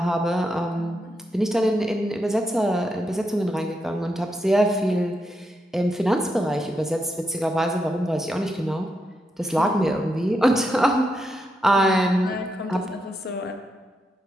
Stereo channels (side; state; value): both; normal; correlation 0.83